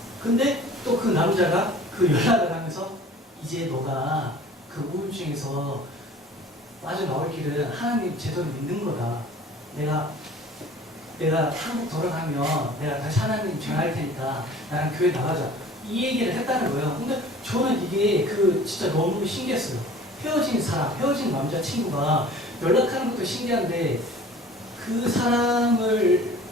근데 또 그 남자가 그 연락을 하면서 이제 너가 그 우울증에서 빠져나올 길은 하나님 제대로 믿는 거다. 내가 한국 돌아가면 내가 다시 하나님 전할 테니까 나랑 교회 나가자. 이 얘기를 했다는 거예요. 근데 저는 이게 진짜 너무 신기했어요. 헤어진 남자친구가 연락하는 것도 신기한데 그 사람을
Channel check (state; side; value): normal; both; correlation 0.46